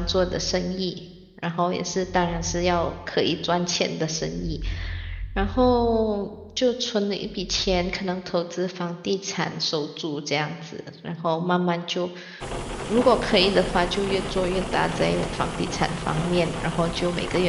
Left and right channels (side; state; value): both; identical; correlation 1.00